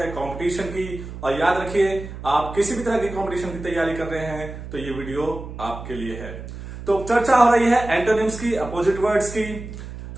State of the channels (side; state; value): right; noise; hum, 11 dB below the sound